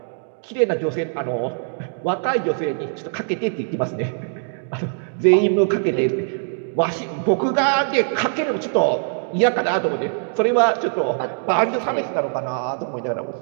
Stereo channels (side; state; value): left; silent; 64 dB below the other